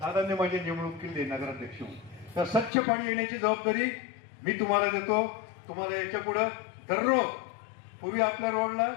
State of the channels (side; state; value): right; drops out; at 2.7 s